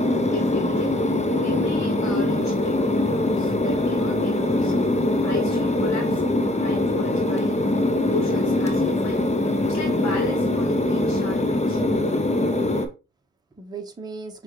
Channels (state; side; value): normal; both; correlation 0.61